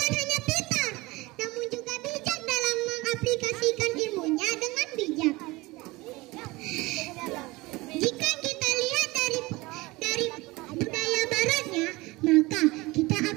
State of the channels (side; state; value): left; quieter; 21.9 dB